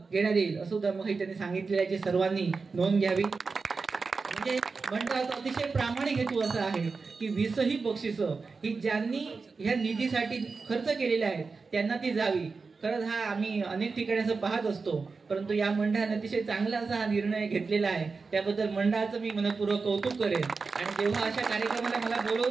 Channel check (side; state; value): left; quieter; 4.5 dB